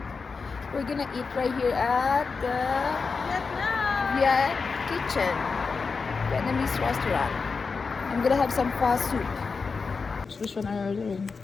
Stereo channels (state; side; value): quieter; right; 4.8 dB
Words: We're gonna eat right here at the Viet Kitchen, Vietnamese restaurant. I'm gonna have some pho soup. Which one are you ordering?